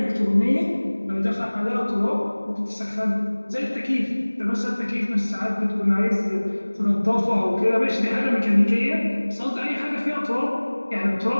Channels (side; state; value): both; inverted; correlation -1.00